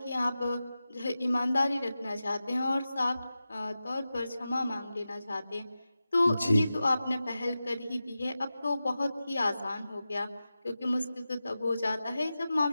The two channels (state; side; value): inverted; both; correlation -0.93